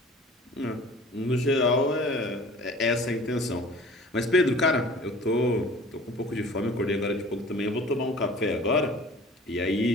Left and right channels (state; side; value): normal; both; correlation 0.45